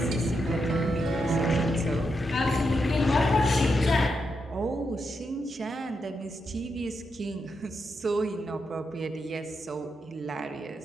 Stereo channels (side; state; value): both; normal; correlation 0.84